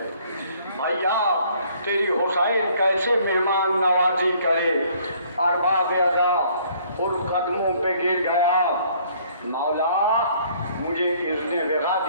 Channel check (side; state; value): both; inverted; correlation -0.60